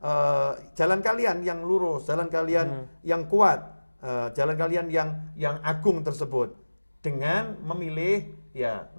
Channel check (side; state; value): both; inverted; correlation -1.00